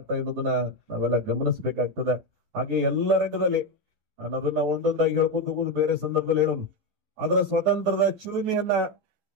ಇರೋದನ್ನ ನಾವೆಲ್ಲ ಗಮನಿಸಬೇಕಾಗ್ತದೆ. ಹಾಗೆ ಎಲ್ಲ ರಂಗದಲ್ಲಿ ನಾನು ಅದನ್ನ ಒಂದೊಂದಾಗಿ ಹೇಳ್ಕೊಂಡು ಹೋಗುದು ಬೇರೆ ಸಂದರ್ಭದಲ್ಲಿ ಹೇಳೋದು. ಅದರ ಸ್ವಾತಂತ್ರ್ಯದ ಚಿಲುಮೆಯನ್ನ,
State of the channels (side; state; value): left; late; 11 ms